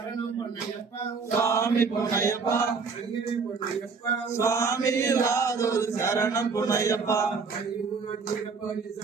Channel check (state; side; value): quieter; left; 4.9 dB